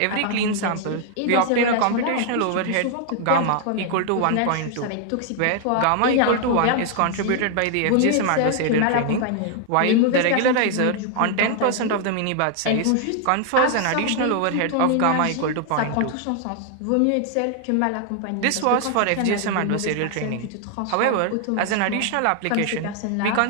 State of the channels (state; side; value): different; both; correlation 0.00